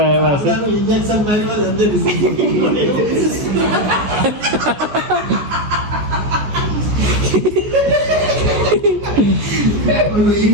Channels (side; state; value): left; late; 14 ms